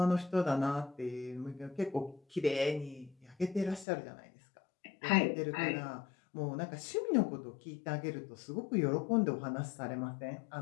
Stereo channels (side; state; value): right; drops out; at 3.9 s